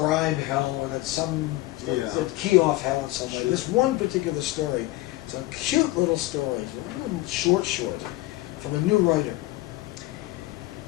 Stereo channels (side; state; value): right; quieter; 18.4 dB